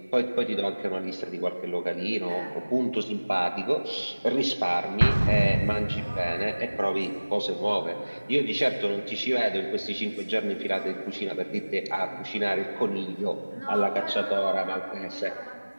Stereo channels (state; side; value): inverted; both; correlation -1.00